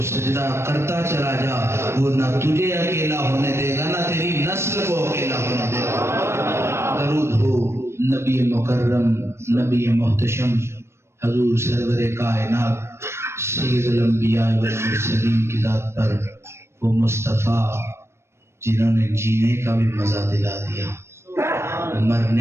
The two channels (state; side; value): late; left; 0.13 ms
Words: سجدہ کرتا چلا جا وہ نہ تجھے اکیلا ہونے دے گا نہ تیری نسل کو اکیلا ہونے دے گا درود ہو نبی مکرم نبی محتشم حضور سرور کائنات سید الانبیاء والمرسلین کی ذات پر وہ مصطفیٰ جنہوں نے جینے کا بھی مزہ دلا دیا